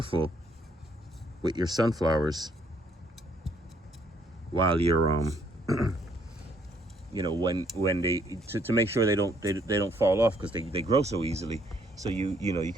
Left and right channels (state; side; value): normal; both; correlation 0.67